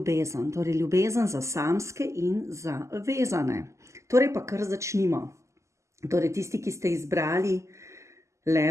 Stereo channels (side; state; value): left; late; 0.14 ms